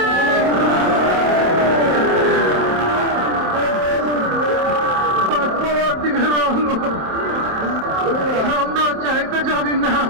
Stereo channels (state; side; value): late; left; 27 ms